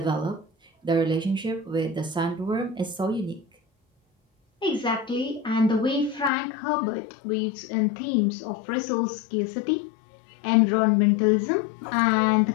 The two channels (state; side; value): drops out; right; at 6.3 s